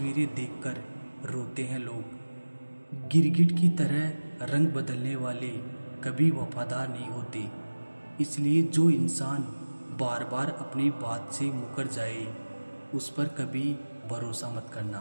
देखकर रोते हैं लोग। गिरगिट की तरह रंग बदलने वाले कभी वफादार नहीं होते, इसलिए जो इंसान बार बार अपनी बात से मुकर जाए उस पर कभी भरोसा मत करना।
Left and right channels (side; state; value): both; inverted; correlation -1.00